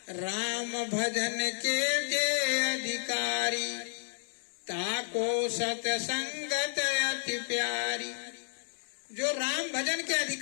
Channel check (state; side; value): silent; right; 57 dB below the other